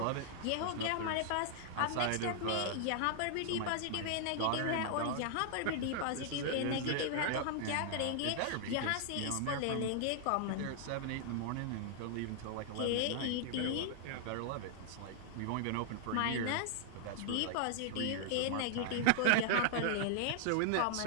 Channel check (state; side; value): different; both; correlation 0.00